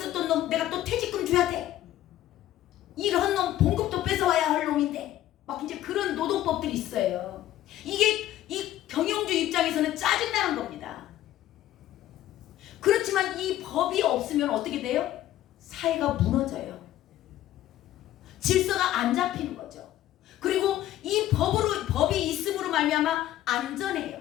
놈 내가 또 퇴직금 줘야 돼. 이런 놈 봉급도 뺏어와야 할 놈인데 막 이제 그런 노동법들이 있어요. 이게 이 경영주 입장에서는 짜증나는 겁니다. 그렇지만 이 법이 없으면 어떻게 돼요? 사회가 무너져요. 질서가 안 잡히는 거죠. 그리고 이 법이 있음으로 말미암아 안전해요.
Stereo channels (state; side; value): quieter; right; 13.5 dB